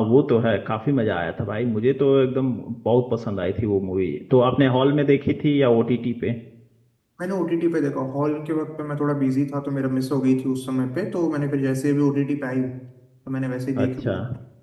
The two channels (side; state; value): both; identical; correlation 1.00